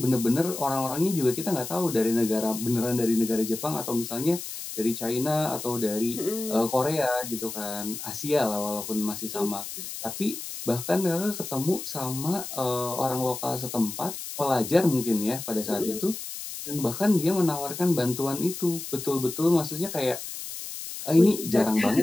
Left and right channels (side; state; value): left; noise; hiss, 8 dB below the sound